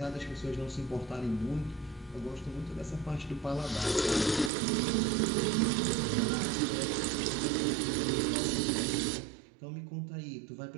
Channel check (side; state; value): left; drops out; at 4.5 s